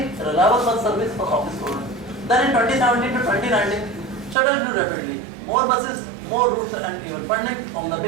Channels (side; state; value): left; drops out; at 4.4 s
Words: a reliable bus service for office students. Then in 2017 to 2019, shuttle grew rapidly. More buses, more routes and even funding from the